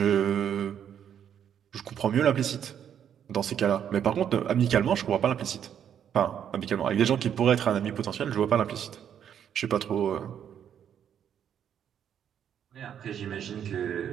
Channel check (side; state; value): left; quieter; 9.0 dB